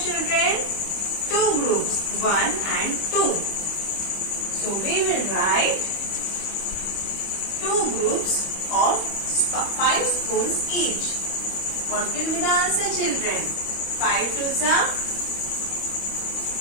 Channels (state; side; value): late; right; 25 ms